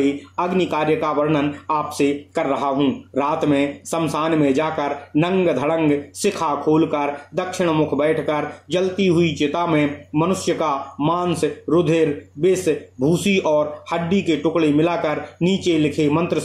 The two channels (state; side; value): identical; both; correlation 1.00